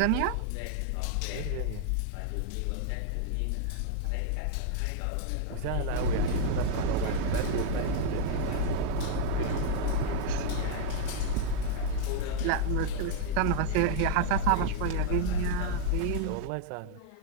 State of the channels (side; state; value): both; different; correlation 0.00